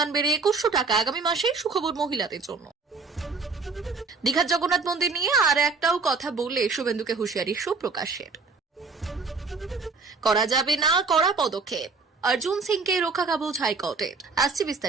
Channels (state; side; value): quieter; left; 4.4 dB